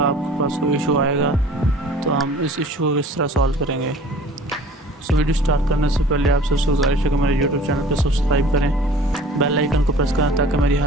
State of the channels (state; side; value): normal; both; correlation 0.47